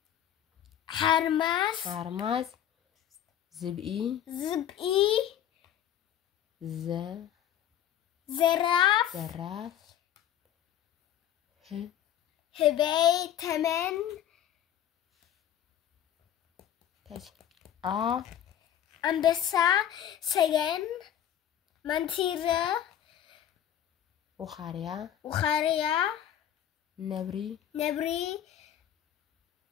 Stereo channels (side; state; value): right; quieter; 10.6 dB